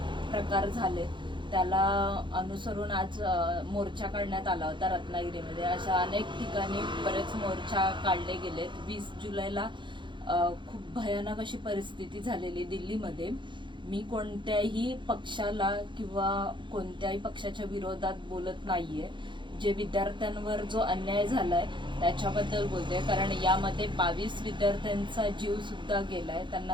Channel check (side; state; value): left; late; 0.23 ms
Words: प्रकार झाले त्याला अनुसरून आज मोर्चा काढण्यात आला होता रत्नागिरीमध्ये. अशा अनेक ठिकाणी बरेच मोर्चा काढले गेलेत. 20 जुलैला खूप भयानक अशी परिस्थिती झालेली दिल्लीमध्ये. मी कोणत्याही पक्षाला किंवा कोणत्याही पक्षाच्या विरोधात बोलत नाहीये. जे विद्यार्थ्यांवर जो अन्याय झालाय त्याच्याबद्दल बोलते, कारण यामध्ये 22 विद्यार्थ्यांचा जीव सुद्धा गेलाय.